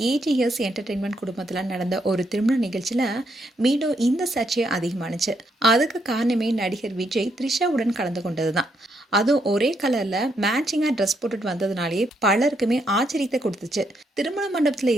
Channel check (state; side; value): normal; both; correlation 0.76